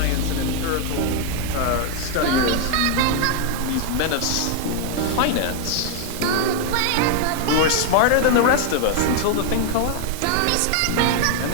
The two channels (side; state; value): both; different; correlation 0.00